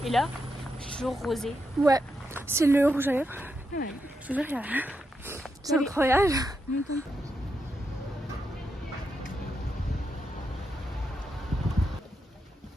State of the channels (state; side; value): normal; both; correlation 0.84